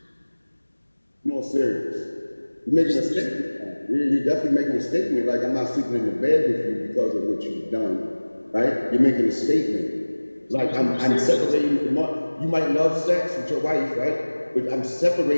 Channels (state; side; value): inverted; both; correlation -1.00